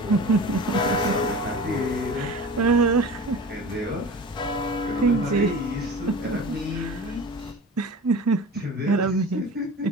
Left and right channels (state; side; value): normal; both; correlation 0.35